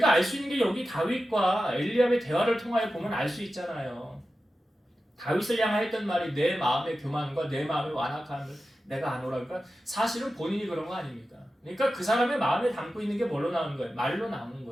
알 수 있는 게 여기 다윗과 엘리압의 대화를 통하여 보면 알 수 있잖아요. 다윗을 향하여 했던 말이 내 마음의 교만과 내 마음의 완악함을 내가 아노라. 그러니까 사실은 본인이 그런 거 아닙니까? 그러니까 그 사람의 마음에 담고 있는 게 뭘로 나오는 거예요? 말로 나오는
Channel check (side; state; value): both; normal; correlation 0.93